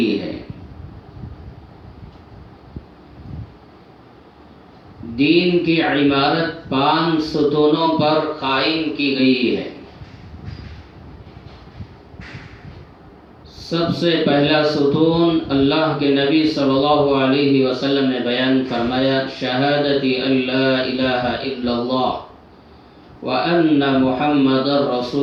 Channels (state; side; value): identical; both; correlation 1.00